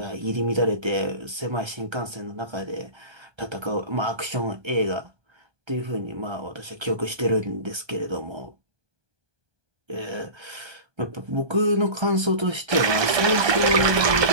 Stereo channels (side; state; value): left; late; 1.2 ms